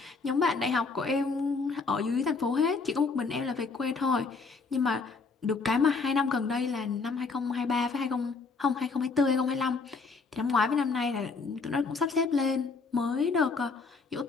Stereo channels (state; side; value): quieter; right; 4.4 dB